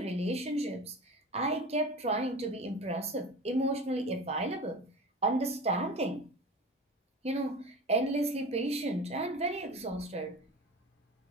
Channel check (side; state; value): both; normal; correlation 0.32